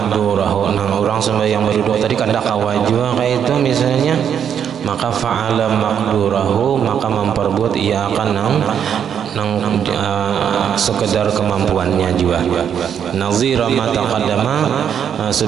nang orang sembahyang berduduk tadi kada kawajua kayak itu misalnya, maka fa'ala maqdurahu, maka memperbuat ia akan nang sekedar kemampuannya juga. Nazira ma taqaddama,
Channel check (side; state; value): left; quieter; 8.3 dB